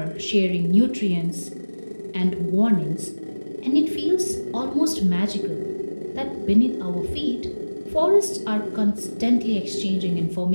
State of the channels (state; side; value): inverted; both; correlation -1.00